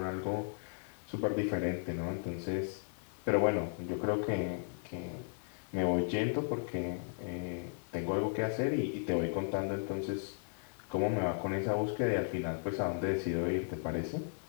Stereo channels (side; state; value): right; silent; 54 dB below the other